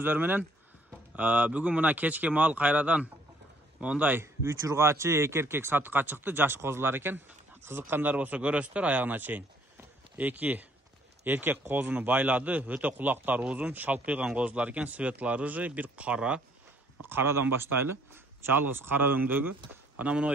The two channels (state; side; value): normal; both; correlation 0.63